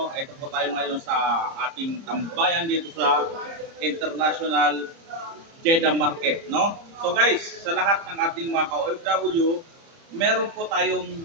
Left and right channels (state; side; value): late; left; 30 ms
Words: Ito po tayo ngayon sa ating tambayan dito sa International Jeddah Market, no? So guys, sa lahat ng ating mga ka-OFW, meron po tayong